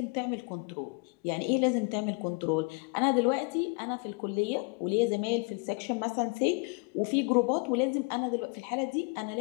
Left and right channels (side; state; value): right; quieter; 32.7 dB